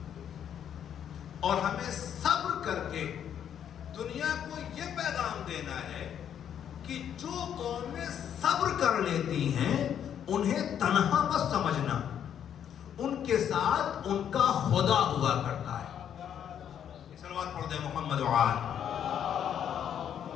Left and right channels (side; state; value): right; quieter; 9.2 dB